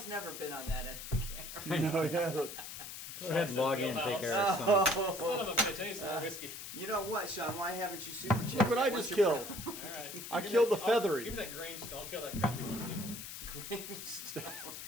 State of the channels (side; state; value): left; noise; hiss, 9 dB below the sound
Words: never been on that end of the camera. No, yeah. Go ahead, log in and take care of some. Son of a bitch, I need some more whiskey. You know what, Sean? Why haven't you super checked? Look what I just killed. All right. I killed the feathery. Give me that Grange stone. I'll kill that crappy one too. Grange stone.